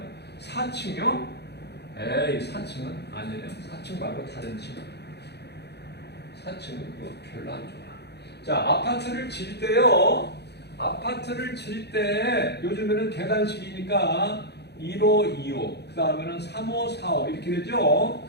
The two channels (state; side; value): late; right; 0.48 ms